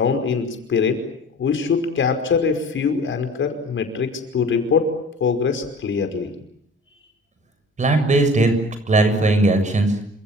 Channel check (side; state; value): both; normal; correlation 0.43